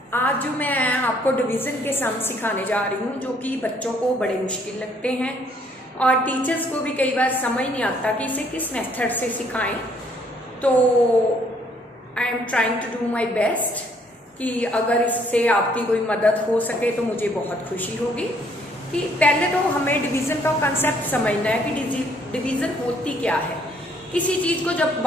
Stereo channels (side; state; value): both; normal; correlation 0.65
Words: आज जो मैं आपको डिवीज़न के सम सिखाने जा रही हूँ जो कि बच्चों को बड़े मुश्किल लगते हैं और टीचर्स को भी कई बार समझ नहीं आता कि इसे किस मेथड से सिखाएं। तो I am trying to do my best कि अगर इससे आपकी कोई मदद हो सके तो मुझे बहुत खुशी होगी। कि पहले तो हमें डिवीज़न का कंसेप्ट समझना है कि डिवीज़न होती क्या है। किसी चीज़ को जब